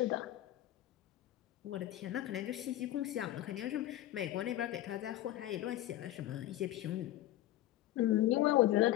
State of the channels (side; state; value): right; quieter; 14.5 dB